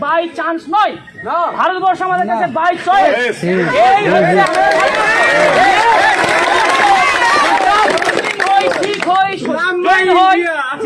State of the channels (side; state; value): both; identical; correlation 1.00